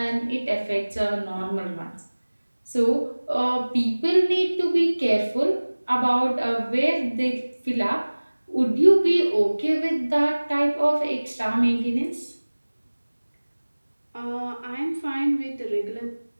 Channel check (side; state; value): both; inverted; correlation -1.00